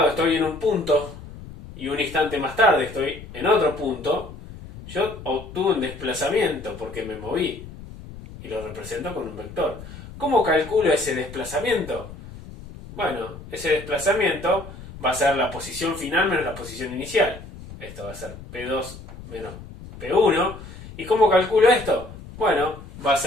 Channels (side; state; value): left; noise; rumble, 15 dB below the sound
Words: estoy en un punto, y un instante más tarde estoy en otro punto, yo obtuve un desplazamiento porque me moví, y lo represento con un vector. ¿Cómo calculo ese desplazamiento? Bueno, ese desplazamiento va a ser la posición final menos la posición inicial. Esto va a ser P2 menos P1. ¿Y cómo calculo esto? Bueno, va a